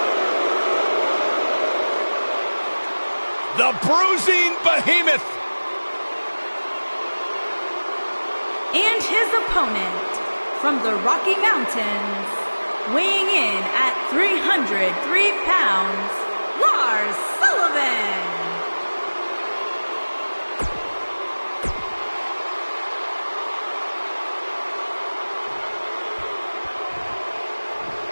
The bruising behemoth. And his opponent from the Rocky Mountains, weighing in at 303 pounds, Lars Sullivan.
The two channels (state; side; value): inverted; both; correlation -1.00